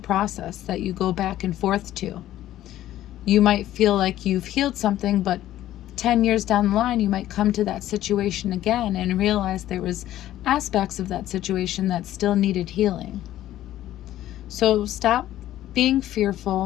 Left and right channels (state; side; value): quieter; right; 13.4 dB